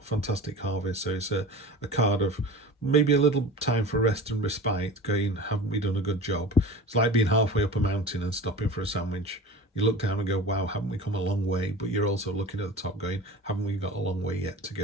fantastic harvest. So it's a card of maybe a little time for rest and respite, going, haven't we done a good job? It's like being halfway up a mountain and stopping for a sandwich. You look down and go, wow, haven't we come a long way? But you're also looking at the top going, haven't we got a long way yet to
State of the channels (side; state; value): both; normal; correlation 0.35